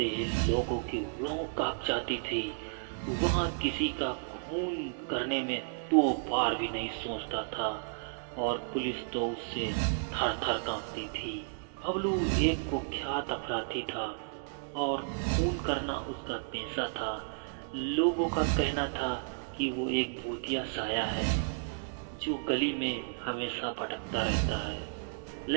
ही लोगों की रूह कांप जाती थी। वहाँ किसी का खून करने में 2 बार भी नहीं सोचता था और पुलिस तो उससे थर थर कांपती थी। बबलू एक कुख्यात अपराधी था और खून करना उसका पेशा था। लोगों का कहना था कि वो एक भूतिया साया है जो गली में हमेशा भटकता रहता है,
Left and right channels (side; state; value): left; silent; 56 dB below the other